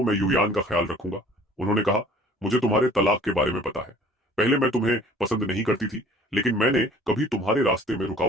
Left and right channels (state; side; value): normal; both; correlation 0.51